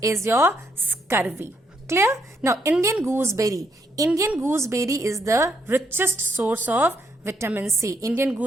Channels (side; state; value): both; normal; correlation 0.75